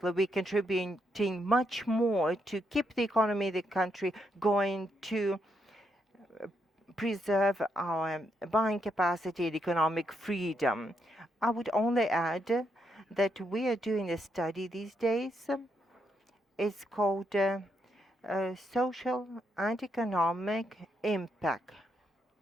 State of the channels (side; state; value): both; normal; correlation 0.79